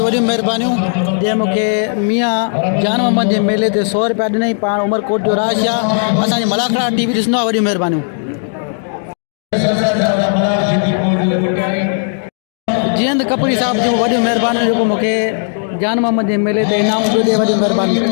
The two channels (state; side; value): silent; right; digital silence